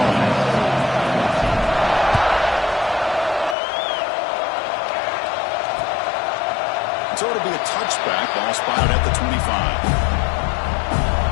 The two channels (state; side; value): drops out; right; at 3.6 s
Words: So it'll be a touchback. Ball spotted at the